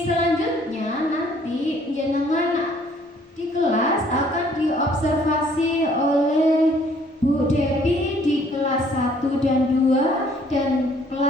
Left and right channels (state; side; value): normal; both; correlation 0.61